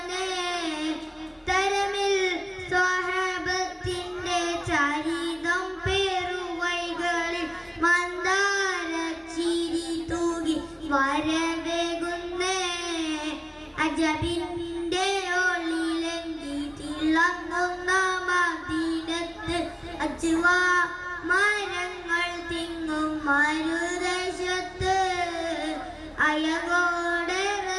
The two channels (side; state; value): both; identical; correlation 1.00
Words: തരമിൽ സ്വഹബത്തിന്റെ ചരിതം പേറുവൈകളിൽ മന്ദാരച്ചിരി തൂകി വരവേകുന്നേ അജബിന്റെ ഒളിലെങ്കി തിളങ്ങുന്ന മദീനത്ത് അജ്വാ മരങ്ങൾ തിങ്ങും മരുദേശത്ത് അയകോടെ